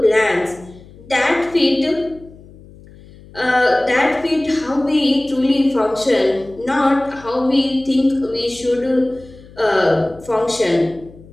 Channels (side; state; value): left; noise; hum, 22 dB below the sound